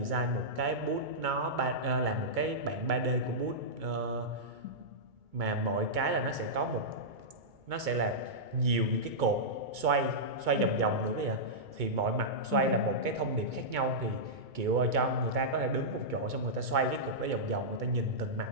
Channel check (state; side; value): late; left; 2.2 ms